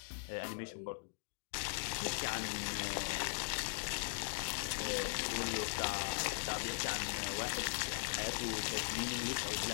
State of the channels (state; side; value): silent; right; digital silence